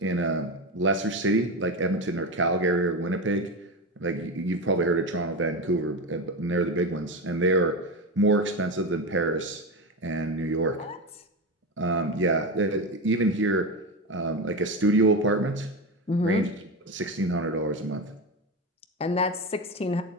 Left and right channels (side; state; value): both; normal; correlation 0.18